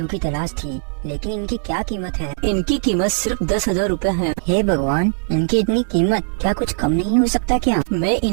की तलाश थी, लेकिन इनकी क्या कीमत है? इनकी कीमत सिर्फ 10,000 रूपए है। हे भगवान, इनकी इतनी कीमत, क्या कुछ कम नहीं हो सकता क्या? मैं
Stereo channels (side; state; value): left; silent; digital silence